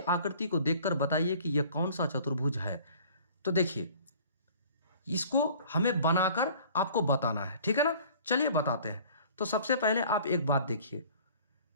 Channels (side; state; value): both; inverted; correlation -0.50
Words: को देखकर बताइए कि यह कौन सा चतुर्भुज है। तो देखिए, इसको हमें बनाकर आपको बताना है, ठीक है ना। चलिए बताते हैं। तो सबसे पहले आप एक बात देखिए,